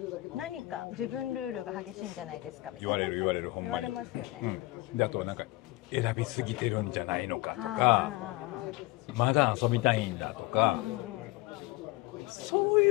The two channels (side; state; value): right; quieter; 20.0 dB